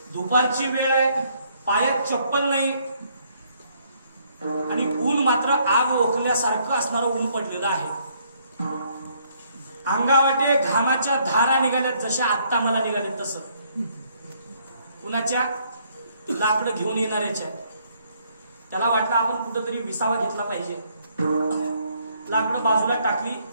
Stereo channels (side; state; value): both; inverted; correlation -0.68